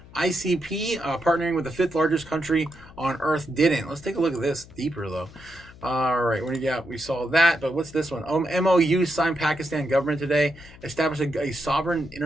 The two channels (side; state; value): left; noise; hum, 21 dB below the sound